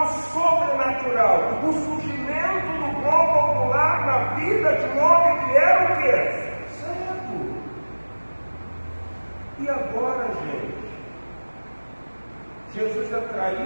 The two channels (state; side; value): inverted; both; correlation -1.00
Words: sobrenatural, o surgimento do globo ocular na vida de um homem que era o quê? Cego. E agora, gente, Jesus é